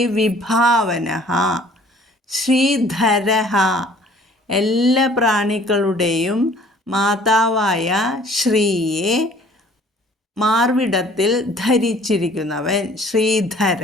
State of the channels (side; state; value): both; normal; correlation 0.54